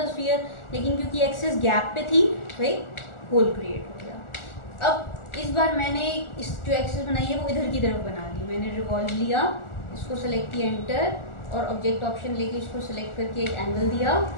स्फीयर, लेकिन क्योंकि एक्सेस गैप पे थी तो एक होल क्रिएट हो गया। अब इस बार मैंने इस जो एक्सेस बनाई है वो इधर की तरफ बना दी। मैंने रिवॉल्व लिया, इसको सेलेक्ट किया एंटर, और ऑब्जेक्ट ऑप्शन लेके इसको सेलेक्ट करके एक एंगल दिया।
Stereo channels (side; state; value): right; late; 1.4 ms